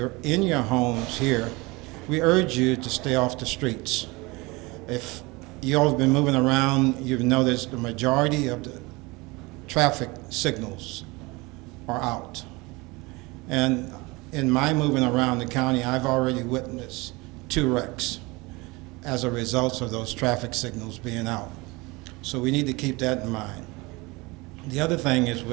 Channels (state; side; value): quieter; left; 24.3 dB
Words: in your homes here, we urge you to stay off the streets. If you all have been moving around, you've noticed the majority of the traffic signals are out. And in my moving around the county, I've already witnessed 2 wrecks as a result of those traffic signals being out. So we need to keep that in mind. The other thing is,